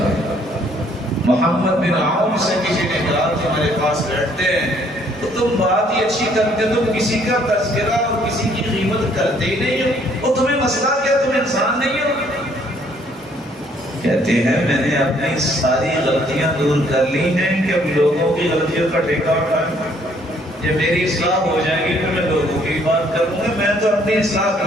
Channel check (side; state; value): both; normal; correlation 0.64